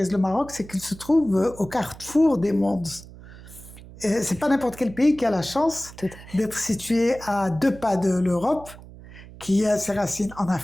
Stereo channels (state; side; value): noise; right; hum, 18 dB below the sound